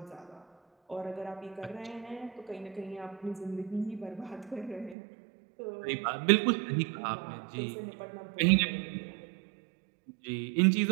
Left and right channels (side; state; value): left; drops out; at 5.0 s